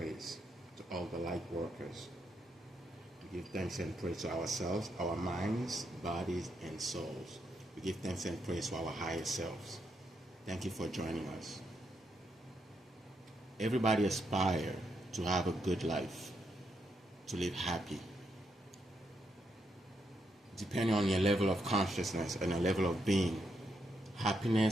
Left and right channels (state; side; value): normal; both; correlation 0.80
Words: to all the light workers. We give thanks and praise to ourselves, our minds, bodies, and souls. We give thanks and praise to our higher selves. Thank you for joining us. Everybody aspires to have a good life, to live happy. Depending on your level of consciousness and your level of being,